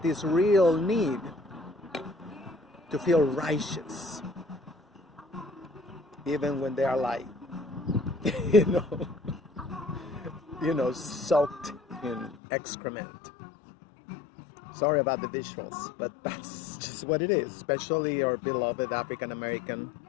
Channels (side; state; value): right; drops out; at 12.4 s